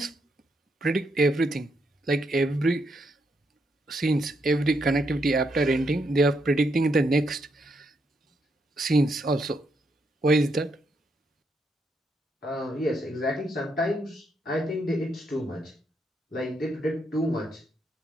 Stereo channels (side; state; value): both; normal; correlation 0.78